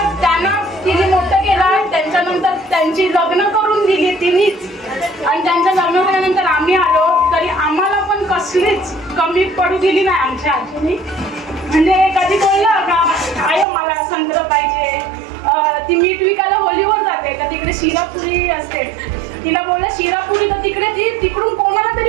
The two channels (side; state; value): left; drops out; at 13.7 s